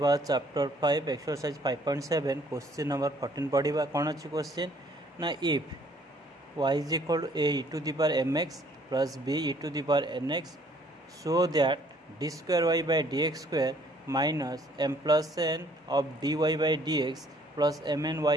चैप्टर 5 एक्सरसाइज 5.7 क्वेश्चन नंबर 14 पढ़ा कौन अच्छी क्वेश्चन ना if y is equal to a e to the power mx plus b e to the power nx so that d square y by dx square minus m plus n of dy by dx plus mn y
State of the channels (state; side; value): normal; both; correlation 0.61